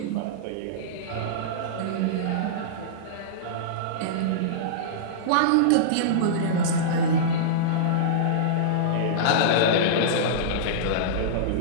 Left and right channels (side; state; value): both; different; correlation -0.03